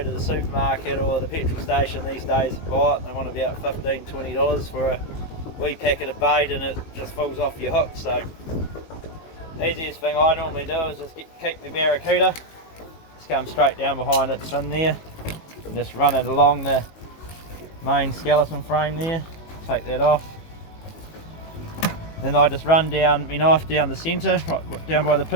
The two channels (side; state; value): right; late; 18 ms